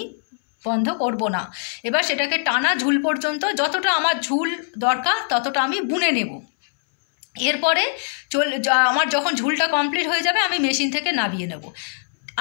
বন্ধ করব না। এবার সেটাকে টানা ঝুল পর্যন্ত, যতটা আমার ঝুল দরকার ততটা আমি বুনে নেব। এরপরে আমার যখন ঝুলটা কমপ্লিট হয়ে যাবে আমি মেশিন থেকে নামিয়ে নেব।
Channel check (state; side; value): silent; right; 64 dB below the other